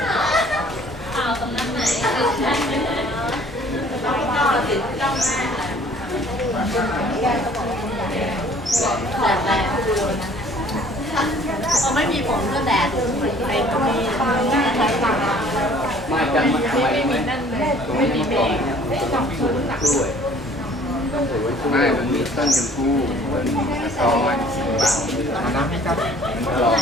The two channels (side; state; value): both; normal; correlation 0.54